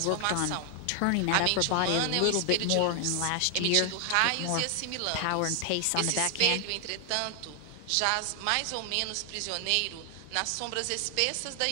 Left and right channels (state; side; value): different; both; correlation 0.00